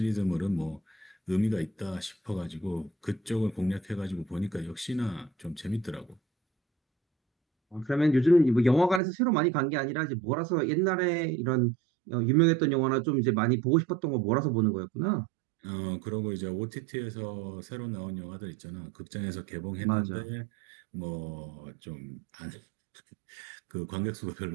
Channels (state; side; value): drops out; left; at 9.0 s